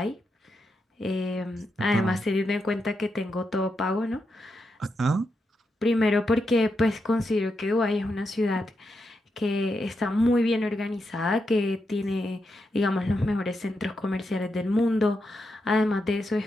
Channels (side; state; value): both; normal; correlation 0.85